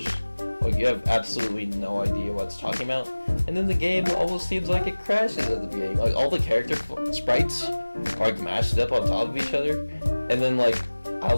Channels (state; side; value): inverted; both; correlation -1.00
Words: Like, you have absolutely no idea what it's talking about, and then the game almost seems like it crashes at the beginning. Like, all the character sprites are, like, mashed up on top of each other, and then, like, I